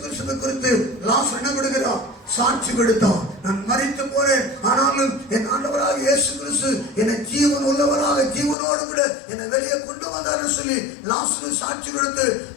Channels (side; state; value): right; drops out; at 8.6 s